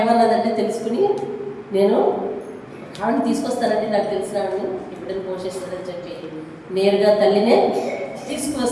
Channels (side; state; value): both; identical; correlation 1.00